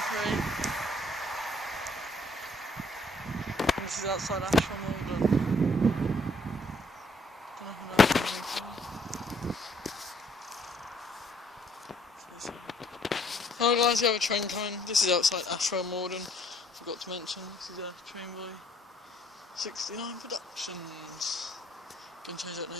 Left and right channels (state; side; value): normal; both; correlation 0.64